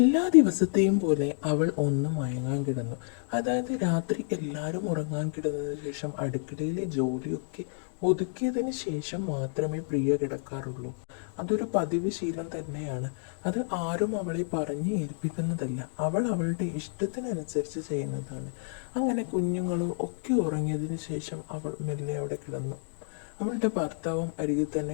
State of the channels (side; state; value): right; silent; digital silence